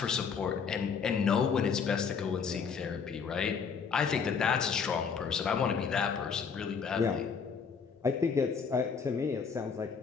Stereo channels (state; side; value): quieter; right; 6.0 dB